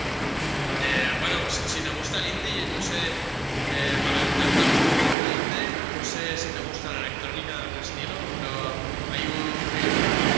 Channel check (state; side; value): drops out; left; at 5.2 s